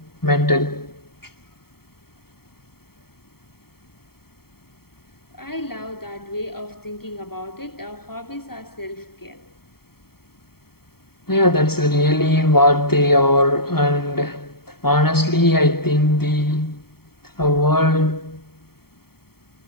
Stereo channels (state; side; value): late; right; 0.95 ms